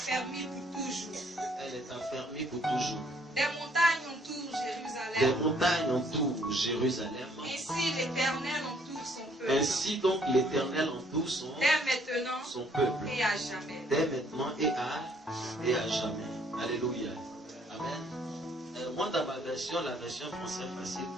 pour toujours. Elle est affermie pour toujours. Des montagnes entourent Jérusalem. Des montagnes entourent Jérusalem. Ainsi l'Éternel entoure son peuple. Ainsi donc l'Éternel entoure son peuple. Et à jamais. Dès maintenant et à jamais. Alléluia. Amen. Moi dans ma version, la version française facile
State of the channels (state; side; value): normal; both; correlation 0.65